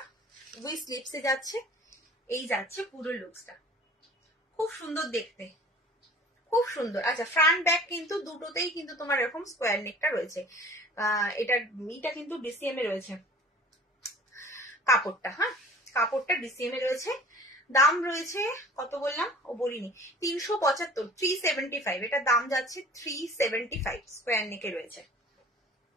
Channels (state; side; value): normal; both; correlation 0.47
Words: উই স্লিপসে যাচ্ছে, এই যাচ্ছে পুরো লুকসটা, খুব সুন্দর দেখতে, খুব সুন্দর। আচ্ছা, ফ্রন্ট ব্যাক কিন্তু দুটোতেই কিন্তু তোমার এরকম স্কোয়ার নেকটা রয়েছে, এটা কিন্তু ডিসিএম এ রয়েছে কাপড়টা, হ্যাঁ কাপড়টা ডিসিএম এ রয়েছে। দাম রয়েছে কত বললাম, ও বলিনি, 375, 375, এটা দাম যাচ্ছে 375, স্কোয়ার নেকে রয়েছে।